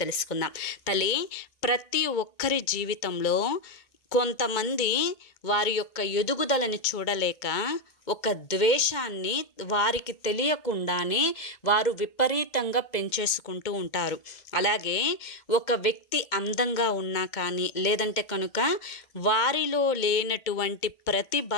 తెలుసుకుందాం. తల్లి, ప్రతి ఒక్కరి జీవితంలో కొంతమంది వారి యొక్క ఎదుగుదలని చూడలేక ఒక ద్వేషాన్ని వారికి తెలియకుండానే వారు విపరీతంగా పెంచేసుకుంటూ ఉంటారు. అలాగే ఒక వ్యక్తి అందంగా ఉన్నా కానీ, లేదంటే కనుక వారిలో లేనటువంటి ప్రతిభ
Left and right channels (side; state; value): right; late; 2.2 ms